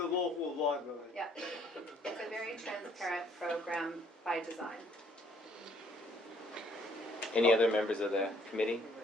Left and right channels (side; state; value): both; normal; correlation 0.63